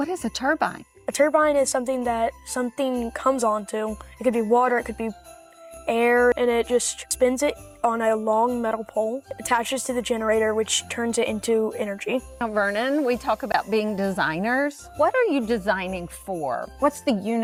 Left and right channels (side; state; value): both; identical; correlation 1.00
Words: is a turbine? A turbine is something that something comes onto. It could be water, it could be air, and it just spins it on a long metal pole, attaches to the generator, which turns it into energy. Now, Vernon, we talk about being designers. What are you designing for? What's the